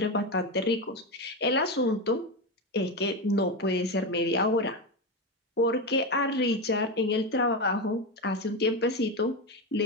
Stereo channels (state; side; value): normal; both; correlation 0.15